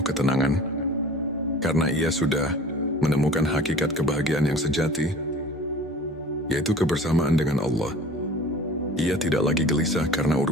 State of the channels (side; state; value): both; normal; correlation 0.43